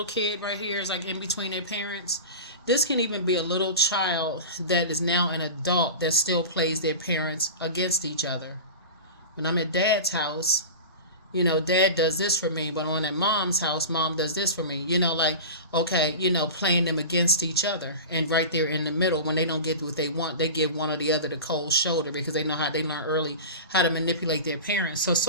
kid right here is like in between their parents? This can even be a little child that is now an adult that still plays their parents against each other. When I'm at dad's house, dad does this for me, but when I'm at mom's house, mom does this for me. Like, okay, playing them against each other. And right there in the middle, when they don't get what they want, they give one or the other the cold shoulder, because they know how they learn early how to manipulate their parents. So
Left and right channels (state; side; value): inverted; both; correlation -0.30